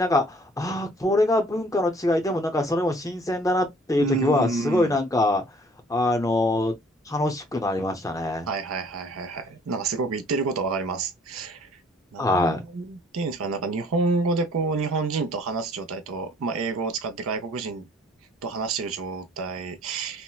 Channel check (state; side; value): normal; both; correlation 0.56